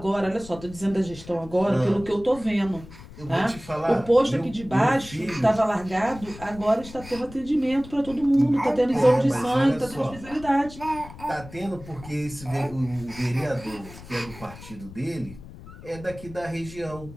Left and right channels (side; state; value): left; noise; rumble, 16 dB below the sound